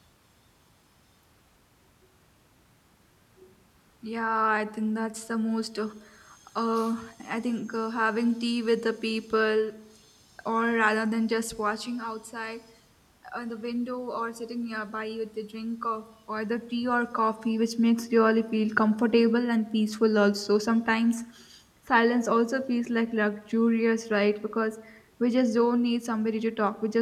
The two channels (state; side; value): identical; both; correlation 1.00